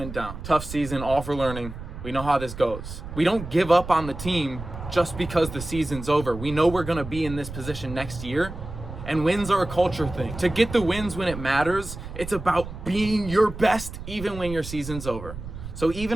down. Tough season, all for learning. We know how this goes. We don't give up on the team just because the season's over. We know we're gonna be in this position next year, and wins are a culture thing. To get the wins when it matters, it's about being your best even when your season's over. So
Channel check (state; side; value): noise; right; rumble, 11 dB below the sound